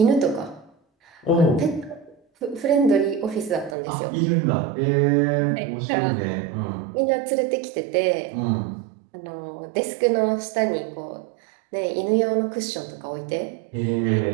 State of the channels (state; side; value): drops out; left; at 3.8 s